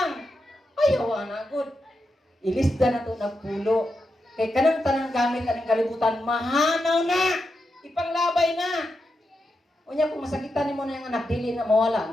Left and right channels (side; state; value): both; normal; correlation 0.87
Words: Ayaw anak. Good. Ilista na ito nagpulo. Kay kanang tanang gamit anong kalibutan, mahanaw na! Ipanglabay na! Unya kung masakitan mo na yung anak, dili na mawala,